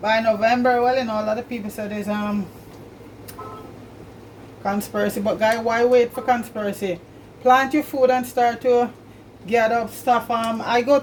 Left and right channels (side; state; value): both; identical; correlation 1.00